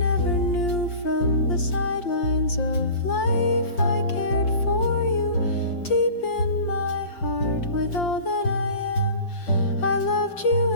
knew. From the sidelines of life I cared for you, deep in my heart with all that I am. I loved you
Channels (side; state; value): right; late; 5.7 ms